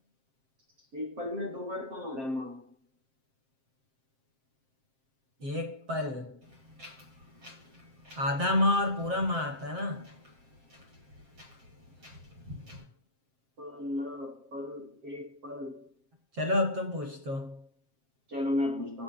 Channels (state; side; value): late; left; 7.5 ms